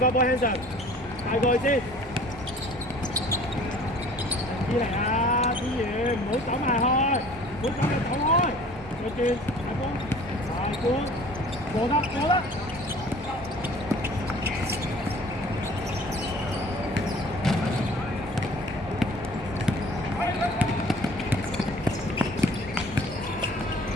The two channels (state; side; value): normal; both; correlation 0.49